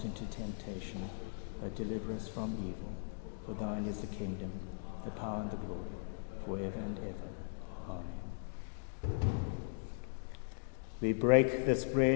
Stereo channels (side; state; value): right; silent; digital silence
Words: into temptation, but deliver us from evil. For thine is the kingdom, the power and the glory, forever and ever. Amen. We break this